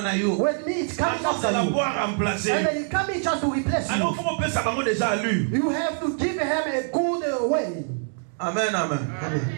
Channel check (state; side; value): silent; left; 62 dB below the other